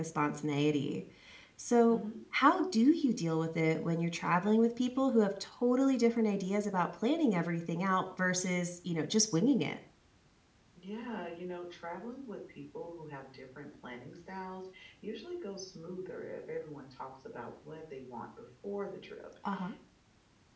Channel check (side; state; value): both; identical; correlation 1.00